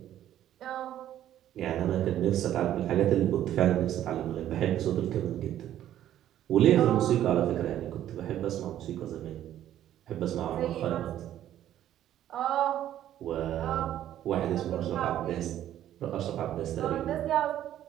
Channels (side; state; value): left; quieter; 11.9 dB